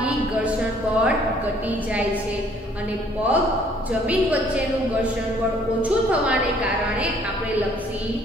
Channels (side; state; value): both; normal; correlation 0.60